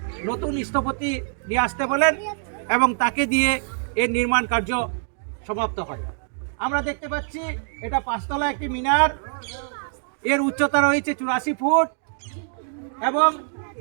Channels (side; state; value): left; silent; digital silence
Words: নতুন স্থপতি নিয়ে আসতে বলেন এবং তাকে দিয়ে এর নির্মাণ কার্য সমাপ্ত হয়। আমরা দেখতে পাচ্ছি এটা 5 তলা একটি মিনার। এর উচ্চতা রয়েছে 84 ফুট এবং